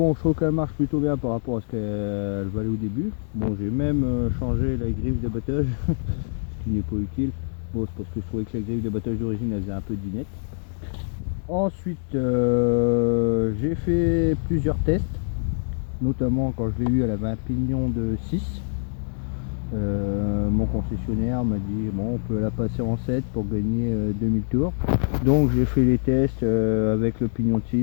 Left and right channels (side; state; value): right; silent; digital silence